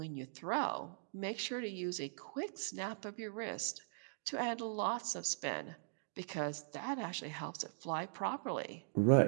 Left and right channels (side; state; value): left; silent; digital silence